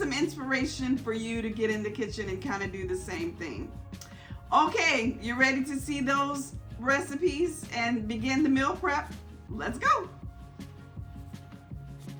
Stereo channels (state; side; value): identical; both; correlation 1.00